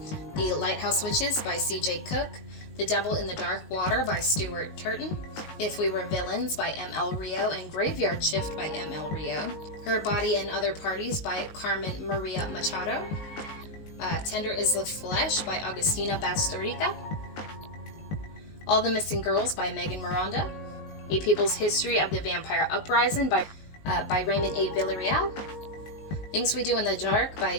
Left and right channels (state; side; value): late; right; 19 ms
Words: The Lighthouse Witches by C.J. Cook, The Devil in the Dark Water by Stuart Turton, If We Were Villains by M.L. Rio, and Graveyard Shift by M.L. Rio, Her Body and Other Parties by Carmen Maria Machado, Tender is the Flesh by Agustina Bastorica, All the Missing Girls by Megan Miranda, A People's History of the Vampire Uprising by Raymond A. Villarreal, Things We Do in the Dark